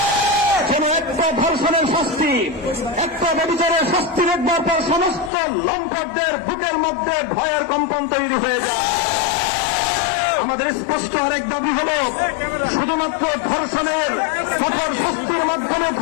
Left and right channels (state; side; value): drops out; right; at 5.3 s